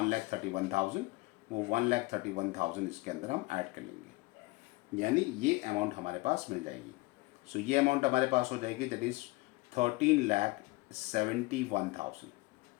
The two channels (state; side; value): quieter; right; 22.9 dB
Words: वो 1,31,000 इसके अंदर हम ऐड कर लेंगे, यानी ये अमाउंट हमारे पास मिल जाएगी। सो ये अमाउंट हमारे पास हो जाएगी, दैट इज 13,71,000।